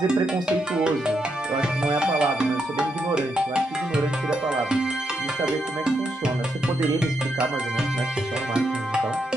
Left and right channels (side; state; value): both; normal; correlation 0.81